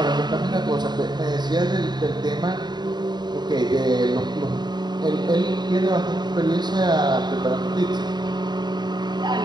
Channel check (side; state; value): left; late; 0.21 ms